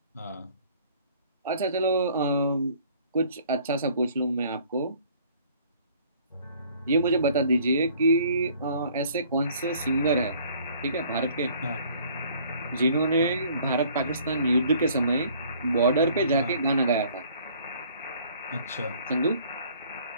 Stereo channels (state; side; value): inverted; both; correlation -0.56